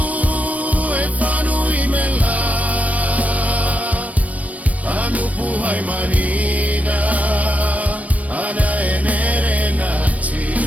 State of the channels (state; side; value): late; left; 0.068 ms